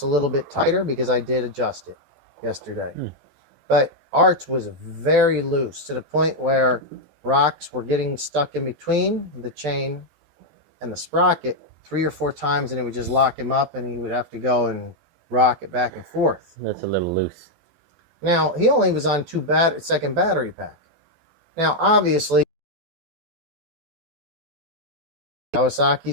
a little bit tighter because I did adjust it yesterday. But Art's was very loose to the point where rocks were getting stuck in between the chain and the sprocket 3 or 4 times, and it would just lock him up, and he would have to go and rock it back and forth. That's a little loose. Now, he only was on second battery pack. Now, obviously,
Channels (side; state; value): left; late; 12 ms